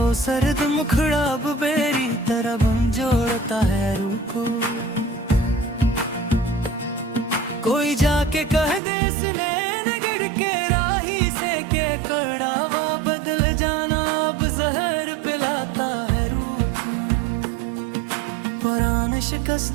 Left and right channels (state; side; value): drops out; left; at 8.8 s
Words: सर्द मुखड़ा अब बेरी तरह बन जोड़ता है रूह को। कोई जाके कह दे इसने नगड़ के राही से के कड़ावा बदल जाना अब जहर पिलाता है रूह को। पुराने